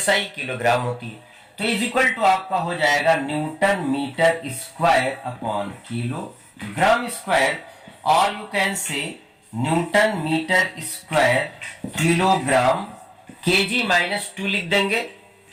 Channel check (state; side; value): identical; both; correlation 1.00